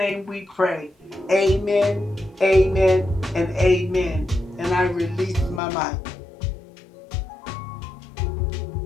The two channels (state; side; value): drops out; right; at 5.6 s